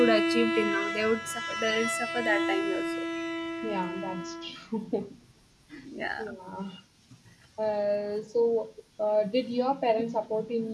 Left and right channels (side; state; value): both; identical; correlation 1.00